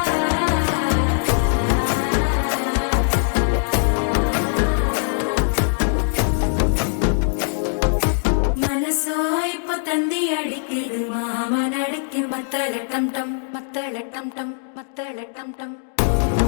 தந்தி அடிக்குது மாமன் அடிக்கு மத்தள டம் டம் மத்தள டம் டம் மத்தள டம் டம்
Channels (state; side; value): silent; right; digital silence